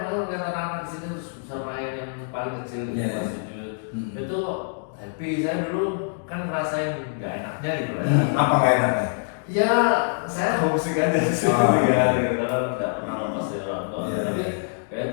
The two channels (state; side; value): silent; right; digital silence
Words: malah lihat anak-anak di sini bisa main yang paling kecil di Iya. kelas 7. Itu happy, saya dulu kan ngerasain nggak enaknya gitu ya. Apa nggak enaknya? Ya, saya homesick aja sih Oh, ya, iya. gitu kan nggak pernah lepas dari orang tua. Iya, Tapi iya. kayak